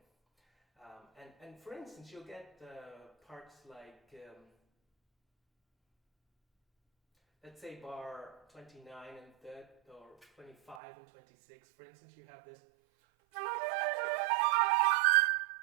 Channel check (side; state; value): left; drops out; at 10.8 s